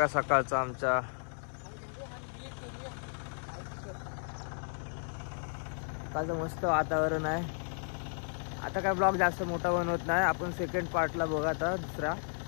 सकाळचं आमच्या. सकाळचं मस्त वातावरण आहे. आता काय ब्लॉग जास्त मोठा बनवत नाही. आपण सेकंड पार्टला बघा आता दुसरा.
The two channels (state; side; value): silent; right; 55 dB below the other